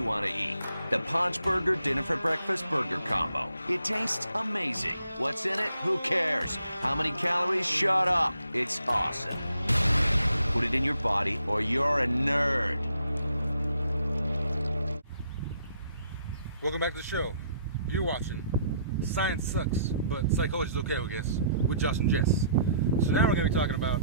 want to eat. The Paunch Burger Dinner for Breakfast Burger Combo. It tastes amazing. What's in it? Who cares? How many calories? Shut up. It's awesome. Put it in your body or you're a nerd. Welcome back to the show. You're watching Science Sucks, but Psychology's okay, I guess, with Josh and Jess. So now we're going to be talking about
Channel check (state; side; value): inverted; both; correlation -0.68